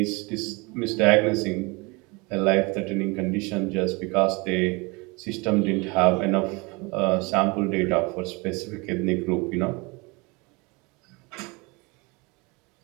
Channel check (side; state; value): left; quieter; 27.1 dB